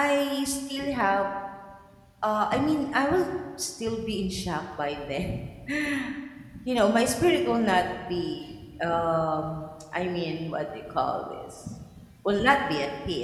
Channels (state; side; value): identical; both; correlation 1.00